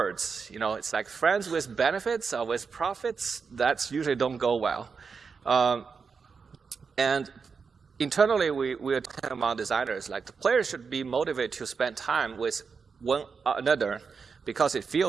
It's like friends with benefits or with profits. That's usually don't go well. And internally, we are talking about designers. Like the players should be motivated to spend time with one another because it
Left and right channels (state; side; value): quieter; left; 5.4 dB